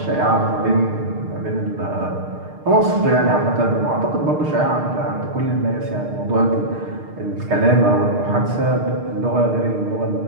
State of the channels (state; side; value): late; left; 6.6 ms